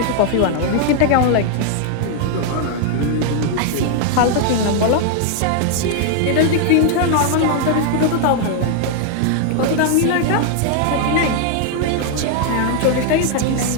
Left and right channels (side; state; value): both; different; correlation 0.00